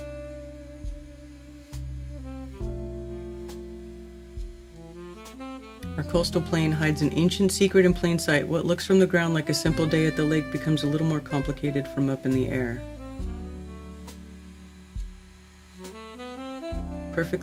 Our coastal plain hides an ancient secret in plain sight. What looks from the ground like a simple day at the lake becomes a little more complicated from up in the air.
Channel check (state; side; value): identical; both; correlation 1.00